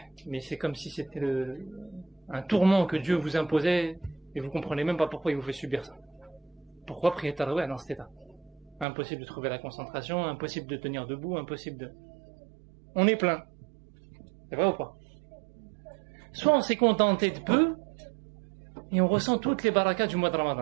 mais c'est comme si c'était un tourment que Dieu vous imposait, et vous comprenez même pas pourquoi il vous fait subir ça. Pourquoi prier Tarawih dans cet état? Impossible de trouver la concentration, impossible de tenir debout, impossible de... On est plein. C'est vrai ou pas? Soit on s'est contenté de peu, et on ressent toutes les barakas du mois de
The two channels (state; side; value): drops out; left; at 8.8 s